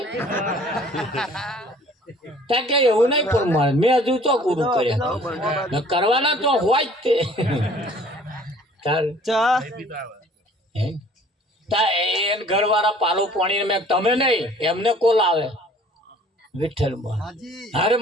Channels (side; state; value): both; normal; correlation 0.53